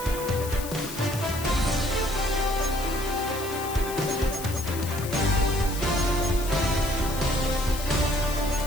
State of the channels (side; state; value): left; noise; hiss, 10 dB below the sound